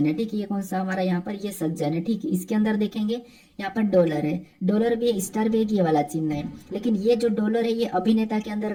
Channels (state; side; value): identical; both; correlation 1.00